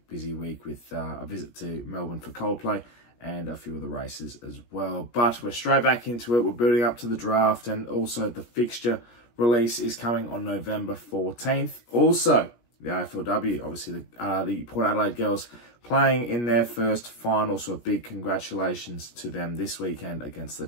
week with a visit to Melbourne for Coldplay and a few of the races as well. But we're straight back into it. We're building up to the draft, and also the fixture release is coming on November 14th. Also, the AFLW, obviously the Port Adelaide girls playing in their first final, so a big congratulations to them this weekend against the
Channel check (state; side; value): late; right; 17 ms